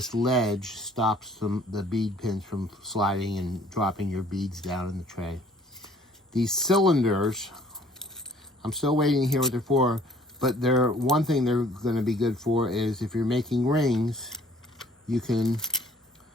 ledge stops the bead pins from sliding and dropping your beads down in the tray. These cylinders, I'm still waiting to hear what they're for, but one thing they're going to be good for is if you're making rings, you can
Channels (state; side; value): normal; both; correlation 0.57